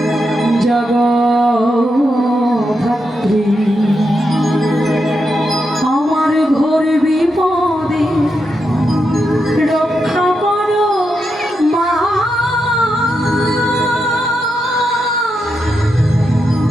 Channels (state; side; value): normal; both; correlation 0.84